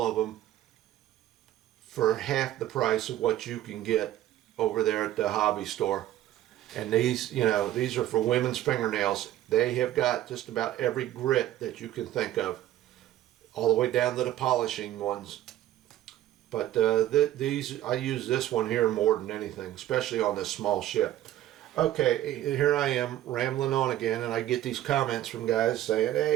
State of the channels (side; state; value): left; quieter; 13.3 dB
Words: of them for half the price of what you can get over there at the hobby store. And these, you know, these are for women's fingernails. They have got just about every grit that you can think of, all the way down to the polishing ones. But these, I use this one here more than anything, especially on this small ship. Okay, here I am rambling on again, and I get these comments from guys saying,